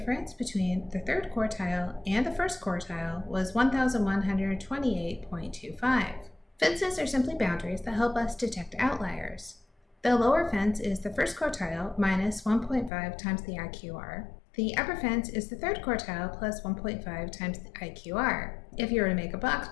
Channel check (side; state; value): right; drops out; at 12.9 s